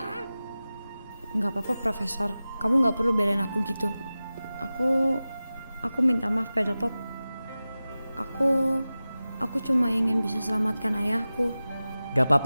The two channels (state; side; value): inverted; both; correlation -0.96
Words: Nggak apa-apa, Profesor. Kamu nggak perlu belain aku gitu. Aku minta maaf, Pedal Pop. Aku cuma ingin bisa selamatkan ayahku. Gak